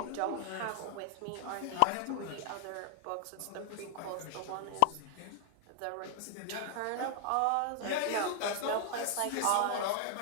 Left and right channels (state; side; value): different; both; correlation 0.00